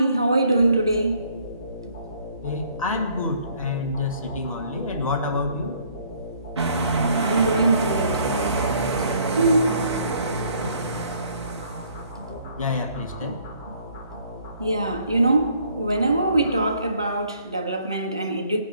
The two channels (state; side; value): inverted; both; correlation -0.62